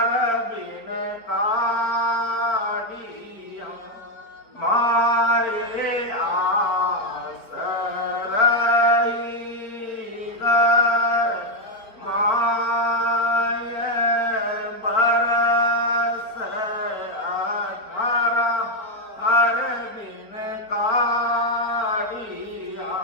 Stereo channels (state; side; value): late; right; 4.6 ms